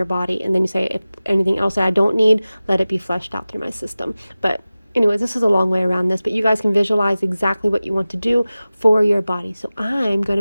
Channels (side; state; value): both; inverted; correlation -0.97